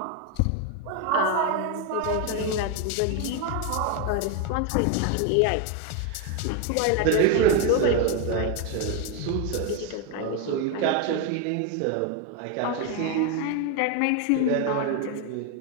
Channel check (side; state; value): both; different; correlation 0.01